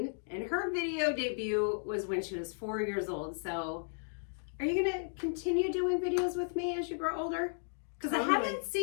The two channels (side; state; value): right; silent; digital silence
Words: and her video debut was when she was 4 years old. So are you gonna continue doing videos with me as you grow older? Because I haven't